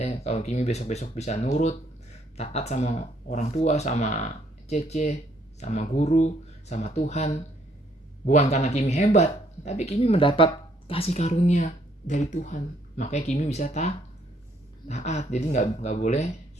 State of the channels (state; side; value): normal; both; correlation 0.68